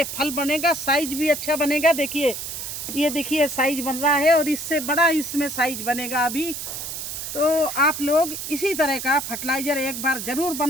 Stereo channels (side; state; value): right; noise; hiss, 6 dB below the sound